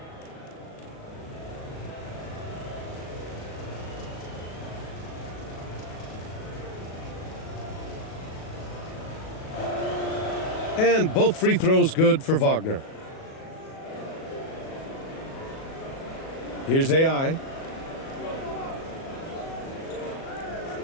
And both free throws good for Wagner. Here's AI.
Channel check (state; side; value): late; right; 37 ms